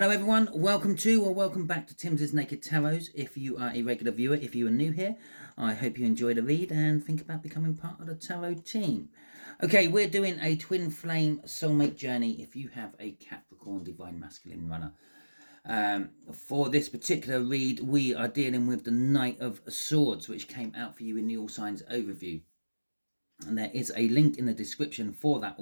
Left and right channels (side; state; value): both; inverted; correlation -1.00